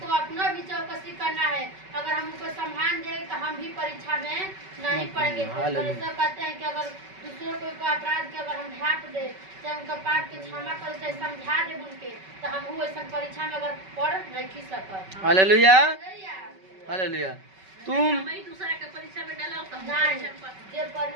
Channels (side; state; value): left; late; 5.3 ms